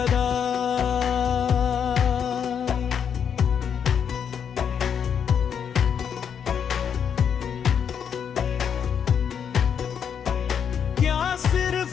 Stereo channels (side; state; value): right; quieter; 7.7 dB